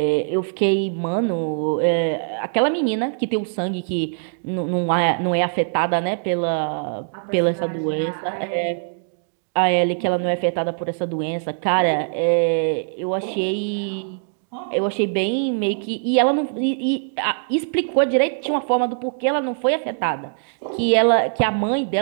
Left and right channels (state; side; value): silent; left; digital silence